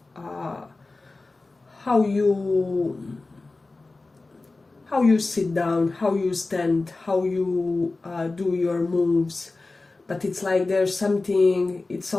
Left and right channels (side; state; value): right; quieter; 3.4 dB